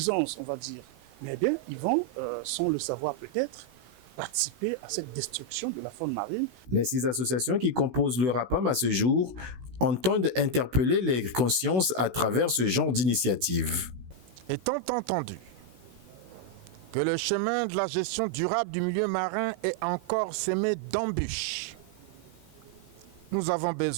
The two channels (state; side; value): late; left; 16 ms